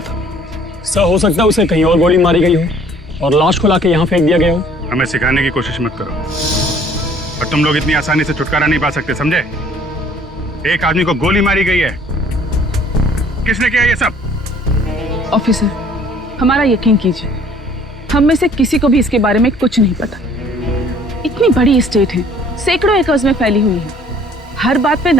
सर, हो सकता है उसे कहीं और गोली मारी गई हो और लाश को लाके यहाँ फेंक दिया गया हो। हमें सिखाने की कोशिश मत करो, और तुम लोग इतनी आसानी से छुटकारा नहीं पा सकते, समझे? एक आदमी को गोली मारी गई है। किसने किया ये सब? ऑफिसर, हमारा यकीन कीजिए, हम में से किसी को भी इसके बारे में कुछ नहीं पता। इतनी बड़ी स्टेट है, सैकड़ों एकर्स में फैली हुई है, हर बात पे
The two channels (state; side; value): normal; both; correlation 0.56